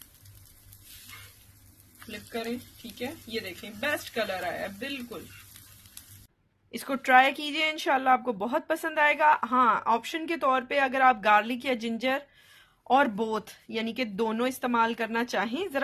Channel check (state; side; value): identical; both; correlation 1.00